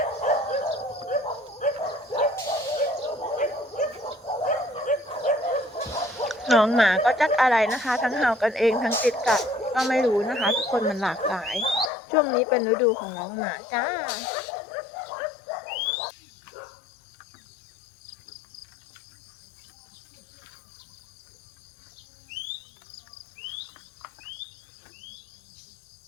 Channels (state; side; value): drops out; right; at 11.9 s